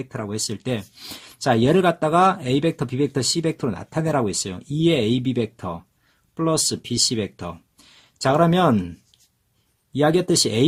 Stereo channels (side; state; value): both; identical; correlation 1.00